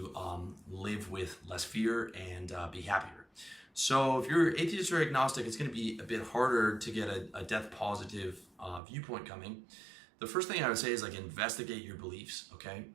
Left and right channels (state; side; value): drops out; left; at 8.8 s